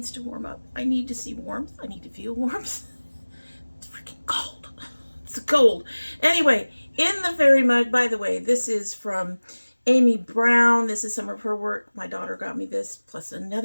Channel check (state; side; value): inverted; both; correlation -1.00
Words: to warm up. I need to see warmth. I need to feel warmth. It's freaking cold. It's cold. Anyway, in the fairy mug, by the way, this is from Amy Brown. This is some of her work. My daughter got me this, plus